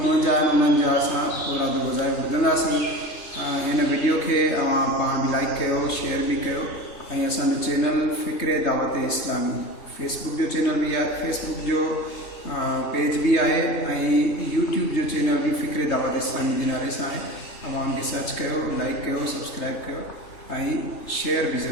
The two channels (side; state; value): right; late; 3.2 ms